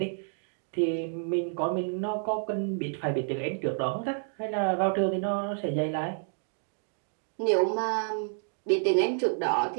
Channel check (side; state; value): left; silent; digital silence